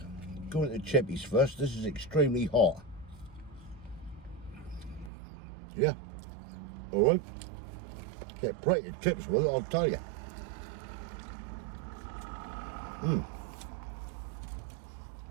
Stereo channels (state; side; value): drops out; left; at 5.1 s